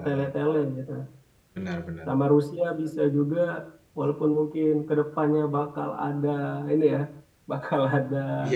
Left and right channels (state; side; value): identical; both; correlation 1.00